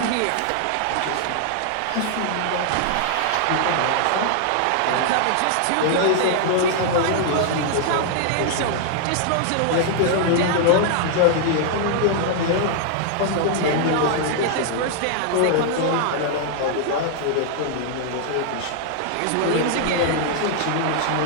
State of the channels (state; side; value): different; both; correlation 0.00